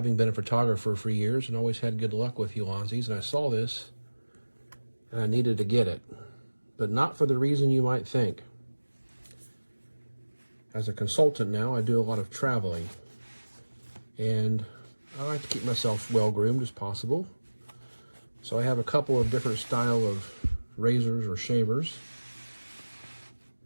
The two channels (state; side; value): inverted; both; correlation -1.00